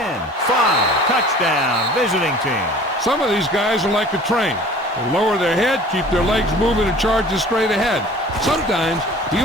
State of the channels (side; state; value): both; normal; correlation 0.46